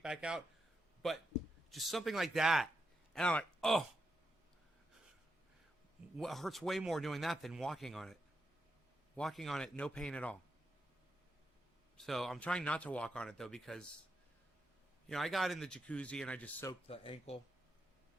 back out. But just something like that. And I'm like, oh. It hurts way more doing that than walking on it. Walking on it, no pain at all. So I'm trying not to walk on it, though, because, you know, I got in the jacuzzi and I just soaked the ankle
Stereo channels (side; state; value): both; normal; correlation 0.85